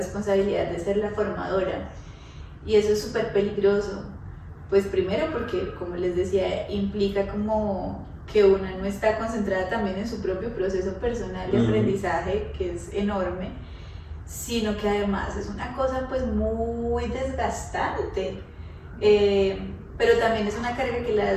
de ser la formadora. Y eso es súper peligroso. Pues primero porque, como les decía, implica como que una no está concentrada también en su propio proceso personal de aprendizaje, que es enorme, sino que además es una cosa pues muy desgastante. Pero también es una carga que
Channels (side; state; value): both; identical; correlation 1.00